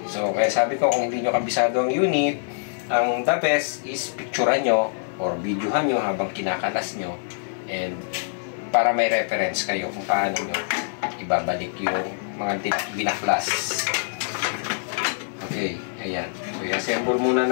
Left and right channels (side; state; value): right; silent; 58 dB below the other